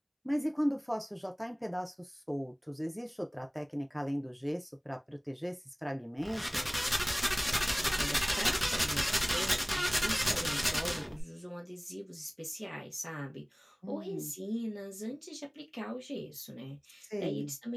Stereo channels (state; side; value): identical; both; correlation 1.00